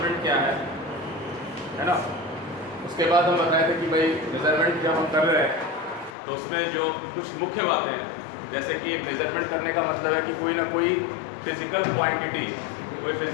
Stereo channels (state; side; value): drops out; right; at 6.2 s